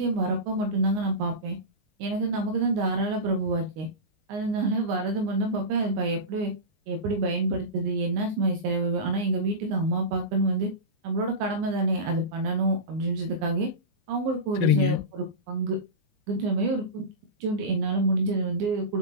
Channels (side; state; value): left; late; 19 ms